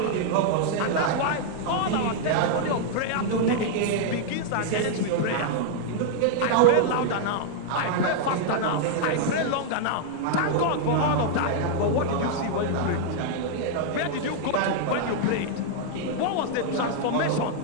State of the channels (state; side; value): different; both; correlation -0.01